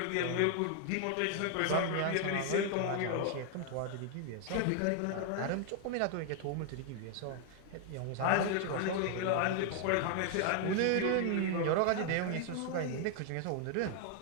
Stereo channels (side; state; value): both; different; correlation 0.00